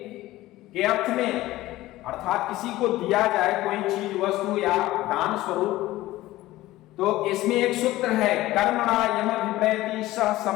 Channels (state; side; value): quieter; right; 16.8 dB